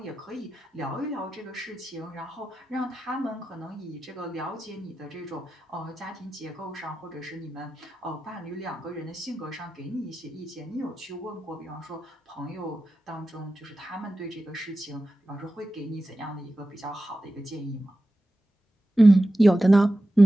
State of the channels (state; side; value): normal; both; correlation 0.93